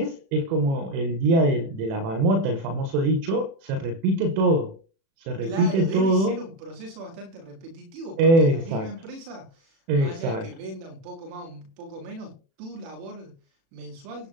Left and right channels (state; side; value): late; left; 36 ms